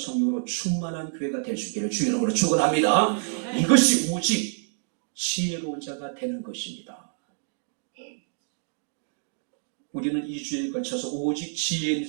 충만한 교회가 될 수 있기를 주의 이름으로 축원합니다. 이것이 오직 지혜로운 자가 되는 것입니다. 우리는 2주에 걸쳐서 오직 지혜 있는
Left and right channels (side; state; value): left; silent; digital silence